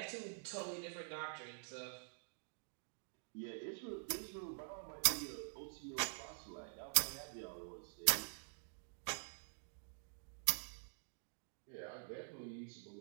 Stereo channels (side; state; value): left; silent; digital silence